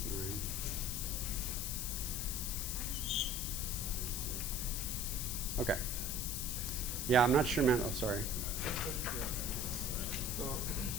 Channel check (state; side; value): noise; left; hiss, 2 dB below the sound